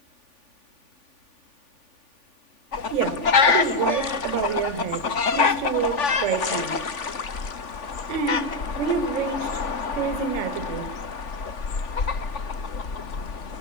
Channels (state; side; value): late; right; 3.5 ms